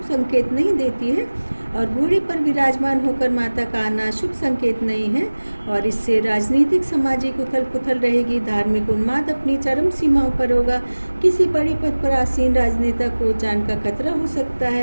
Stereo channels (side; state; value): both; inverted; correlation -1.00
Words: संकेत नहीं देती है और घोड़े पर विराजमान होकर माता का आना शुभ संकेत नहीं है। और इससे राजनीतिक, सामाजिक उथल पुथल रहेगी, धार्मिक उन्माद अपनी चरम सीमाओं पर होगा, किसी बड़े पद पर आसीन राजनेता को जान का खतरा हो सकता